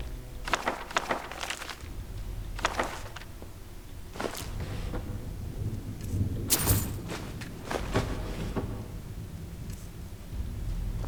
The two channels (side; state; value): both; identical; correlation 1.00